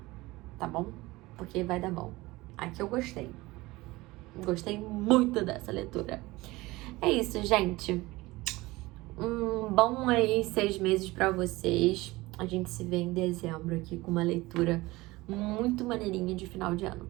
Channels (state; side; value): quieter; left; 20.4 dB